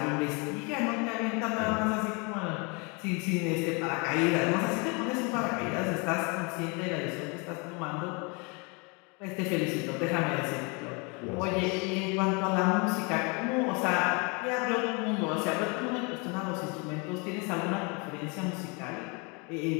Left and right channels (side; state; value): right; quieter; 31.4 dB